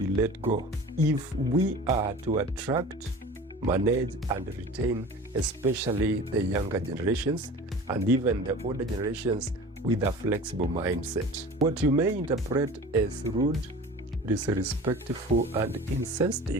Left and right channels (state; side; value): normal; both; correlation 0.39